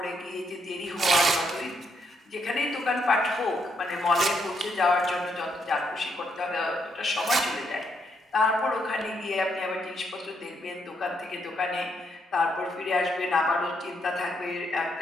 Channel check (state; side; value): normal; both; correlation 0.76